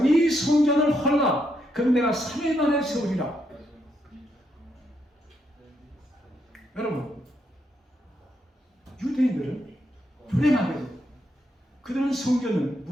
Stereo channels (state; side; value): normal; both; correlation 0.78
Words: 이 성전을 헐라 그럼 내가 3일 만에 세우리라. 여러분 유대인들은 불행하게도 그들은 성전을